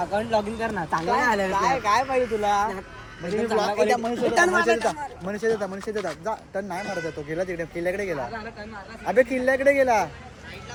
लॉग इन कर ना. चांगलं नाही आलं काय पाहिजे तुला? मनुष्य देता जा. टन नाही मारत तो. गेला तिकडे किल्ल्याकडे गेला. अबे किल्ल्याकडे गेला.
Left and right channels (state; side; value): identical; both; correlation 1.00